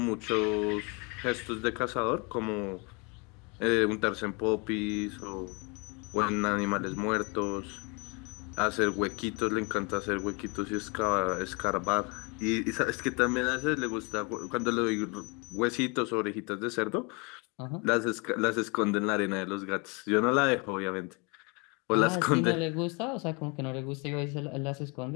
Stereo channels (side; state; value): right; quieter; 30.8 dB